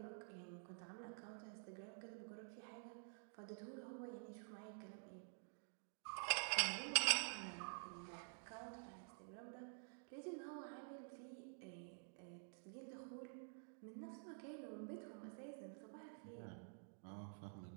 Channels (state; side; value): silent; left; digital silence